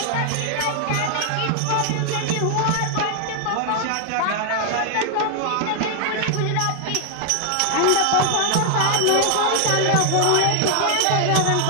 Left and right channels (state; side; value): different; both; correlation 0.00